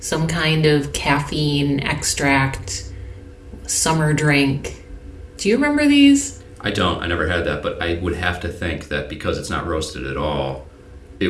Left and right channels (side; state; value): both; identical; correlation 1.00